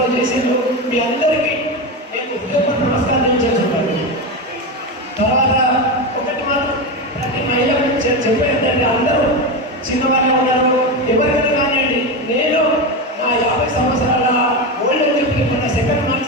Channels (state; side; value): normal; both; correlation 0.16